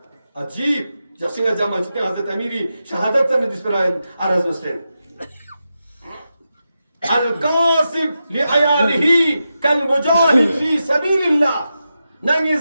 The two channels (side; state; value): both; inverted; correlation -0.89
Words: अजीब जैसे जमा जितने हज़रत अमीरी शहादत से जिस पर आराज़ मुस्लिम अल-कासिब लिअयालिही कल मुजाहिद फी सबीलिल्लाह नंगी